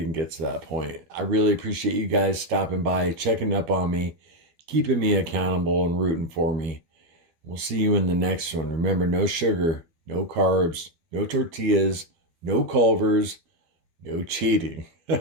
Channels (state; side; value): late; left; 12 ms